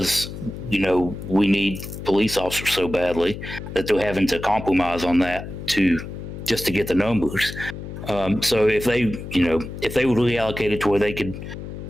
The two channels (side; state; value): left; noise; hum, 9 dB below the sound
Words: you know, we need police officers so badly that they're having to compromise on that just to get the numbers. So if they would reallocate it to where they could,